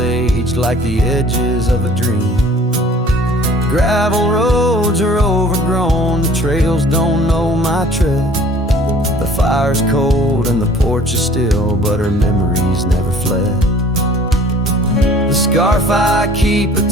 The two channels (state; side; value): normal; both; correlation 0.51